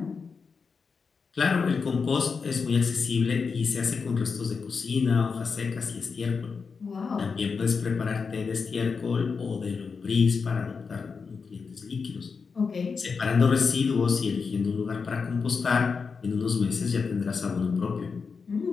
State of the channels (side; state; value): right; quieter; 5.3 dB